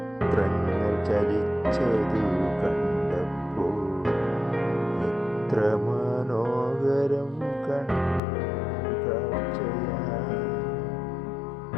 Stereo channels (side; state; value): right; drops out; at 8.2 s